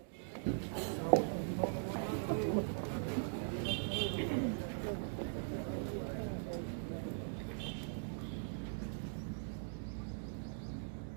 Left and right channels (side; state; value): left; silent; digital silence